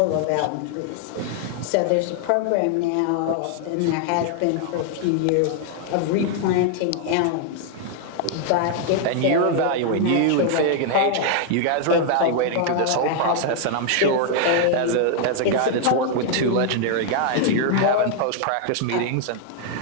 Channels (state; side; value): different; both; correlation 0.00